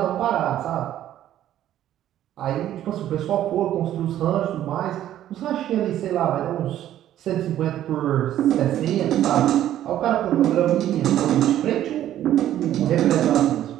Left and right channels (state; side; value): quieter; left; 12.1 dB